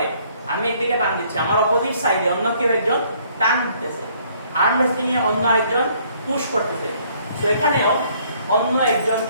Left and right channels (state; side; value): inverted; both; correlation -0.63